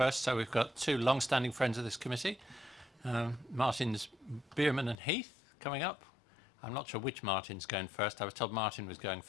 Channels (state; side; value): drops out; right; at 5.0 s